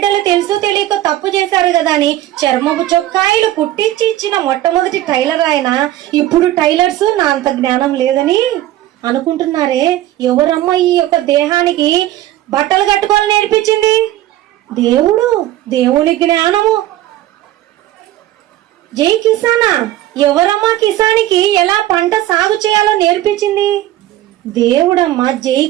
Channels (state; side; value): quieter; left; 14.4 dB